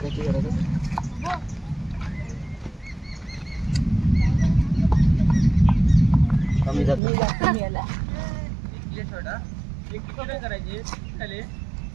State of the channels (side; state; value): left; drops out; at 7.0 s